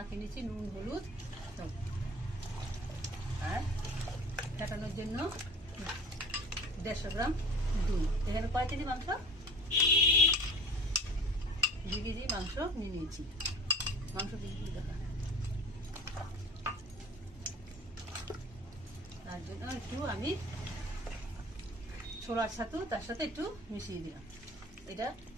নিচ্ছি, নুন হলুদ, আর ফেটানোর জন্য 150 গ্রাম দুধ। এখানে কয় কেজি মাংস? 2 কেজি মাংস নিয়ে নিয়েছি। মাংস 2 কেজি টাকা। তার জন্য একটু আমি ছোলার ছাতু তার সাথে একটু মিশিয়ে দিলাম, এটা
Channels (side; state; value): both; normal; correlation 0.42